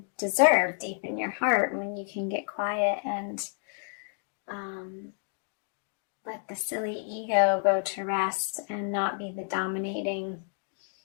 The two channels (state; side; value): silent; right; 58 dB below the other